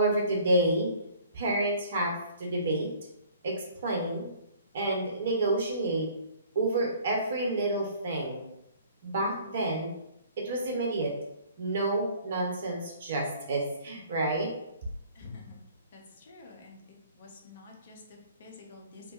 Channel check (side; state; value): both; inverted; correlation -0.53